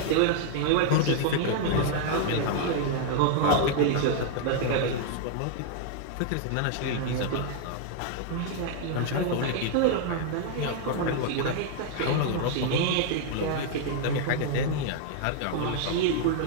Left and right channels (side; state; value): both; different; correlation 0.00